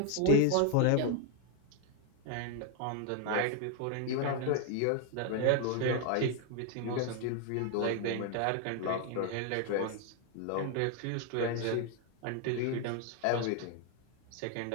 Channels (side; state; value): both; different; correlation 0.00